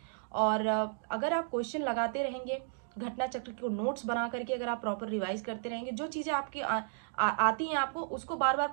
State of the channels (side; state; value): left; silent; digital silence